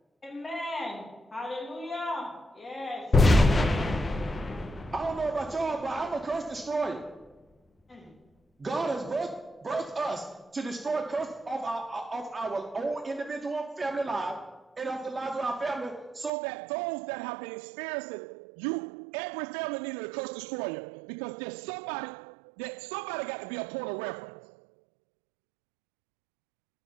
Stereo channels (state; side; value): drops out; left; at 16.3 s